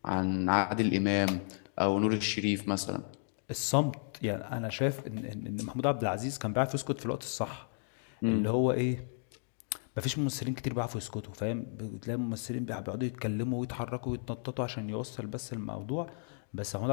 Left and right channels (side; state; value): right; silent; digital silence